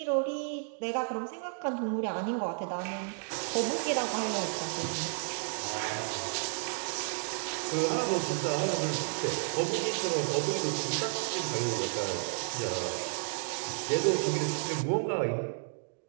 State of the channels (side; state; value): left; silent; 56 dB below the other